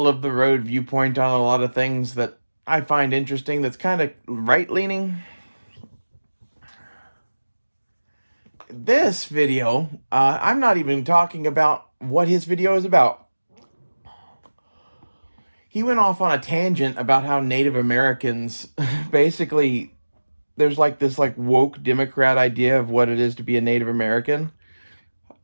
of the road viewpoint on a lot of things that I find interesting that's kind of right leaning. This video, I'm not even talking about what his video is about. He went off on a tangent about how Native Americans basically there's like this like woke Democrat idea of what it is to be a Native American.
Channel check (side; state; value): both; inverted; correlation -1.00